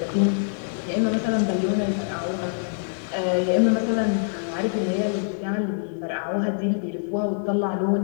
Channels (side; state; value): right; silent; digital silence